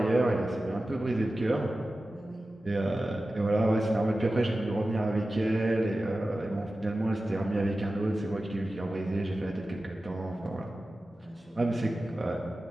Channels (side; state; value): both; normal; correlation 0.95